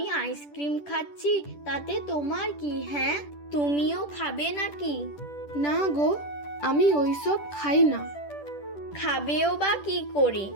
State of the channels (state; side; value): late; right; 10 ms